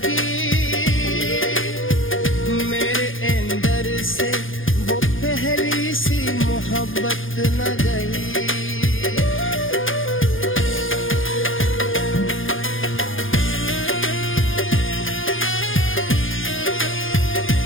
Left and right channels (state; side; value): late; right; 0.58 ms